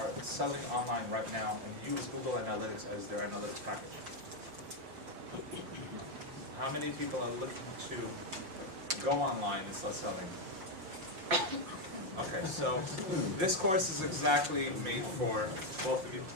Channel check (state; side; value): late; left; 5.6 ms